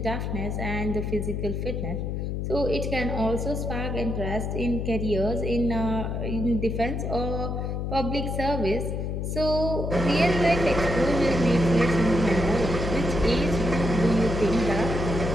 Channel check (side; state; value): left; noise; hum, 2 dB below the sound